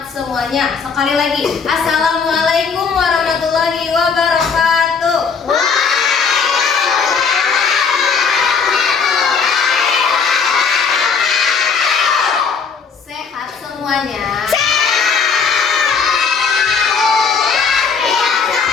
semuanya. Sekali lagi. Assalamualaikum warahmatullahi wabarakatuh. Sehat semuanya.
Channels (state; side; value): quieter; right; 5.6 dB